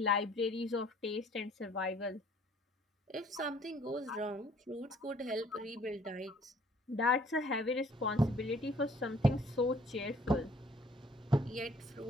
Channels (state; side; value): normal; both; correlation 0.58